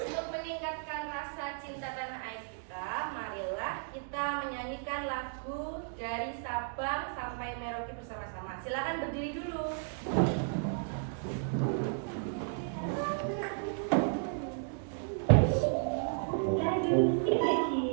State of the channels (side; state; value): left; silent; digital silence